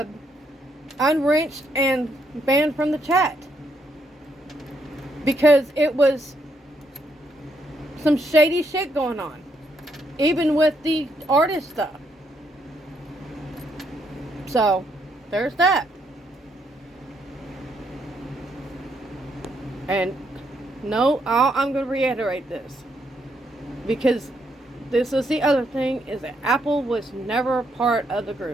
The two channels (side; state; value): both; normal; correlation 0.76